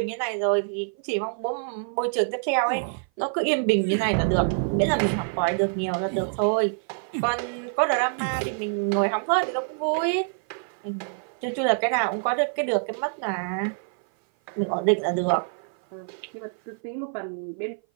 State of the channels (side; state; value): left; silent; 57 dB below the other